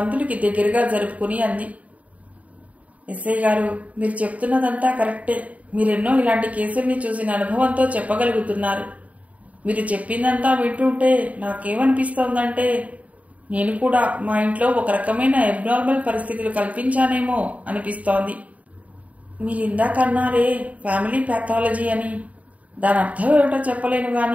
దగ్గరగా జరుపుకుని అంది, ఎస్ఐ గారు, మీరు చెప్తున్నదంతా కరెక్టే. మీరెన్నో ఇలాంటి కేసుల్ని చూసిన అనుభవంతో చెప్పగలుగుతున్నారు. మీరు చెప్పిందంతా వింటుంటే నాకేమనిపిస్తోందంటే నేను కూడా మా ఇంట్లో ఒక రకమైన అబ్నార్మల్ పరిస్థితులు కల్పించానేమో అనిపిస్తోంది. మీరు ఇందాకన్నారే ఫ్యామిలీ ప్యాథాలజీ అని, దాని అర్థం ఏమిటో చెప్పలేను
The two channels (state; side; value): late; left; 0.069 ms